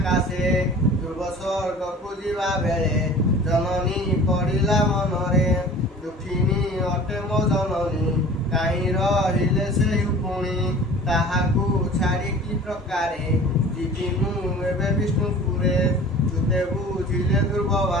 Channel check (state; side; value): normal; both; correlation 0.43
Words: ଧ୍ରୁବ ସ୍ୱର୍ଗକୁ ଯିବା ବେଳେ। ଜନନୀ ପଡ଼ିଲା ମନରେ, ଦୁଃଖିନୀ ଅଟେ ମୋ ଜନନୀ। କାହିଁ ରହିଲେ ସେହି ପୁଣି, ତାହାକୁ ଛାଡ଼ି କି ପ୍ରକାରେ। ଯିବି ମୁଁ ଏବେ ବିଷ୍ଣୁପୁରେ, ତୁତେ ବୁଝିଲେ ଧ୍ରୁବ